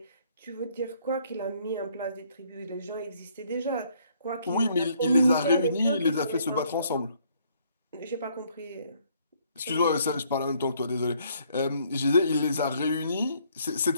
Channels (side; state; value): both; inverted; correlation -0.66